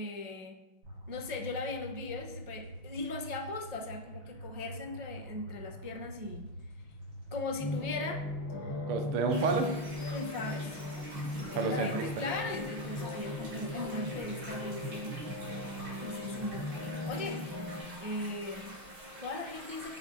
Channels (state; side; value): late; left; 6.0 ms